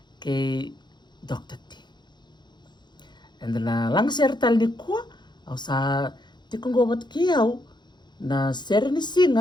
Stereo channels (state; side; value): late; right; 0.21 ms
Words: kay Dr. T. And na lagasere tal ni kuwa, au sa tikungo bat kiyaw, na Sere ni